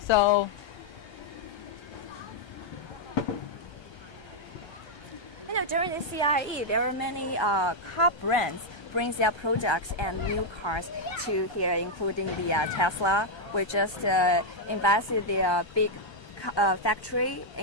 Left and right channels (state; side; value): late; right; 1.3 ms